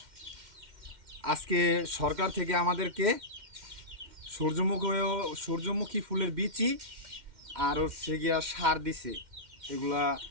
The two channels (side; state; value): left; late; 2.1 ms